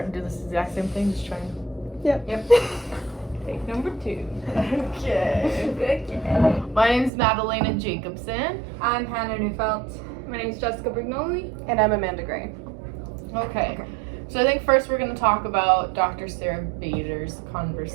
and do this exact same thing, just trying. Yep. Take number 2. Okay. My name's Madalena Jacobson. I'm Hannah Neufeld. My name's Jessica Brignoli. And I'm Amanda Gray. Okay. So I think first we're going to talk about Dr. Sarah Bader's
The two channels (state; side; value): drops out; left; at 7.1 s